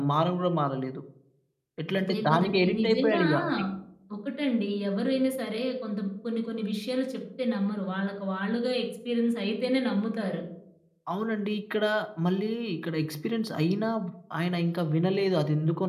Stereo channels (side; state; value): both; identical; correlation 1.00